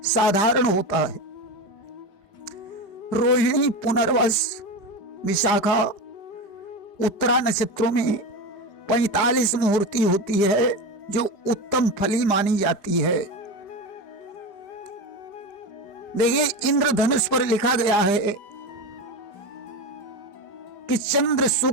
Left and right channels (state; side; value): late; right; 5.2 ms